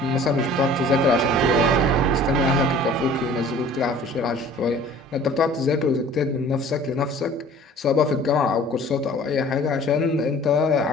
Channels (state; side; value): normal; both; correlation 0.48